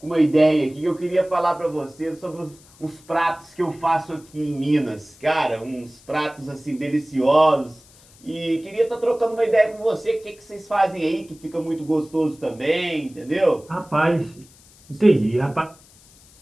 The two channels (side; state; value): left; noise; hiss, 26 dB below the sound